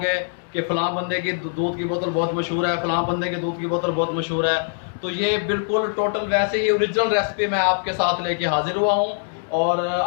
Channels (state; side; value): silent; right; digital silence